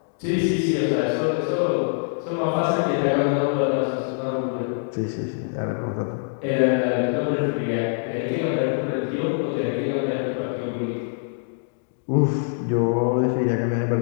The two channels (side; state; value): right; silent; digital silence